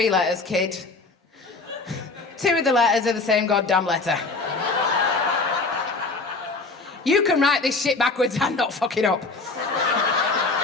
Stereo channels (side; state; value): right; quieter; 3.7 dB